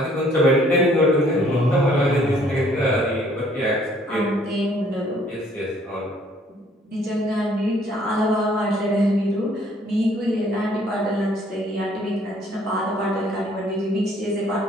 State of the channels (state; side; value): normal; both; correlation 0.61